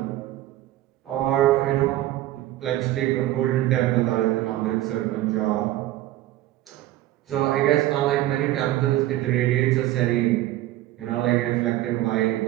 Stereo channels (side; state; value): left; quieter; 15.0 dB